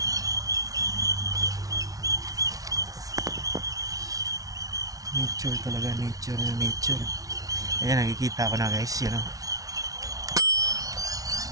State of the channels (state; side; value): late; left; 0.18 ms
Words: Nature talaga, nature. Ayan, nakikita ko na guys, yun o.